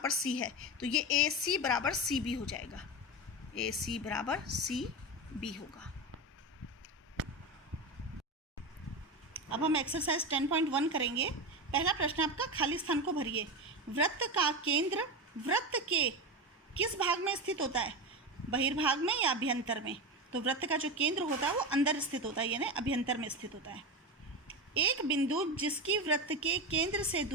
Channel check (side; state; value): both; normal; correlation 0.20